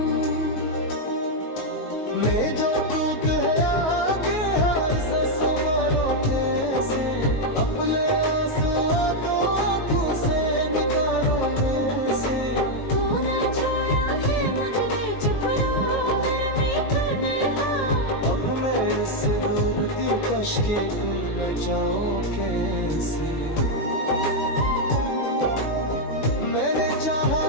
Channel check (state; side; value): late; right; 19 ms